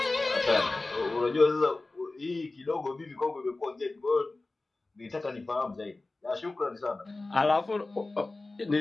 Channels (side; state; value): right; quieter; 3.2 dB